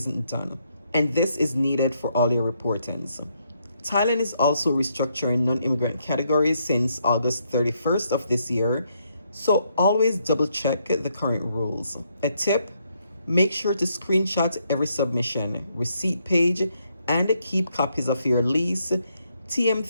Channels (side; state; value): both; inverted; correlation -0.75